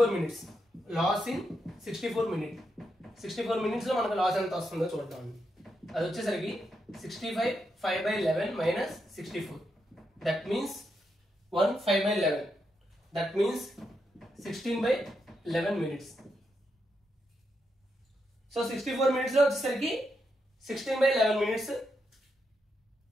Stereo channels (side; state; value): both; normal; correlation 0.83